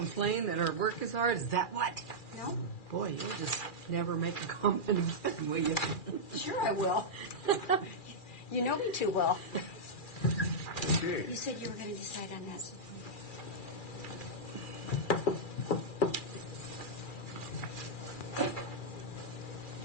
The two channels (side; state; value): right; late; 2.4 ms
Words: that her work is hard. Is that what? No? Boy, you'll just never make a comment again, will you? Sure I will. You know me too well. Okay. You said you were going to decide on that.